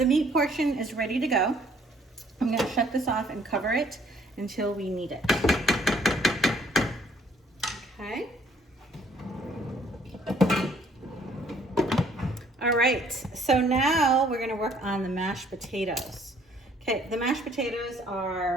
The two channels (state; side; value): normal; both; correlation 0.61